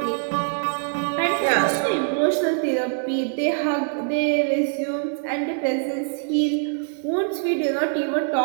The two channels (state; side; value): silent; left; digital silence